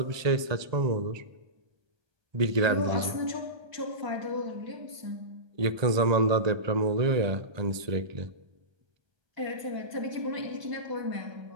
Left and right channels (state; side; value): late; left; 1.2 ms